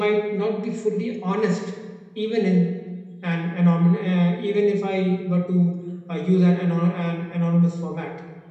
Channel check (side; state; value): both; identical; correlation 1.00